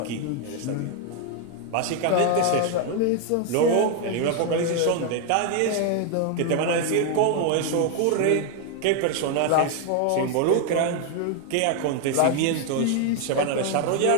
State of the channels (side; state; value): both; different; correlation 0.00